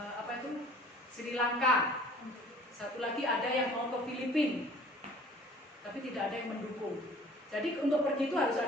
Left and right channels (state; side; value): normal; both; correlation 0.51